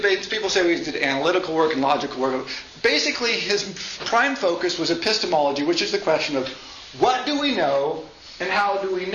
people say he did analytical work and logical work. Basically, his prime focus was epistemology, which is the question of what do we know and how do we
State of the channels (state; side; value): identical; both; correlation 1.00